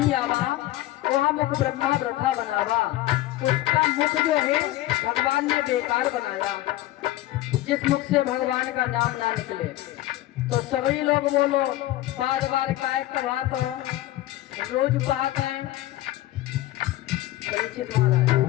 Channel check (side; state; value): right; quieter; 15.8 dB